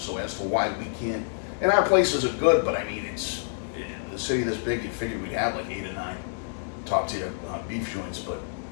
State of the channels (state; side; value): silent; right; 60 dB below the other